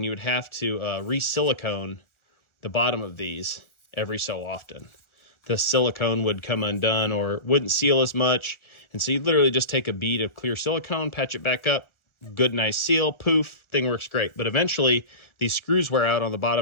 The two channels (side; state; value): right; late; 1.4 ms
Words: you would have to re-silicone the bottom of these every so often. The silicone would come undone or wouldn't seal as much. And so you literally just take a bead of clear silicone, patch it back up, good, nice seal, poof, thing works great. But eventually, these screws wear out on the